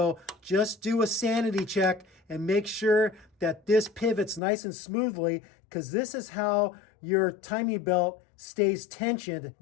just do a sanity check and make sure that this pivots nice and smoothly, because this is how your timing belt stays tensioned.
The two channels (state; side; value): drops out; right; at 4.4 s